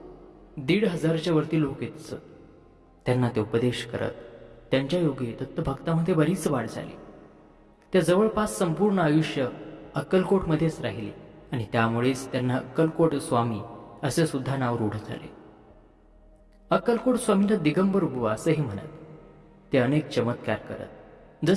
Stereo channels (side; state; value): both; identical; correlation 1.00